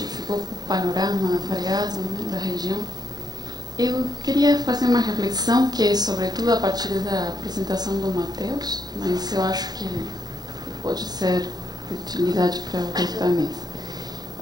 ficou com o panorama variado, né, da região. Eu queria fazer uma reflexão que é, sobretudo, a partir da apresentação do Matheus, mas eu acho que pode ser de utilidade para o resto da mesa.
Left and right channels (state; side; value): late; left; 0.19 ms